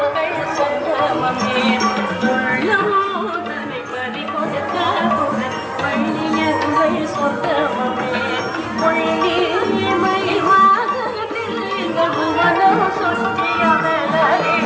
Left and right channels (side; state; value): both; identical; correlation 1.00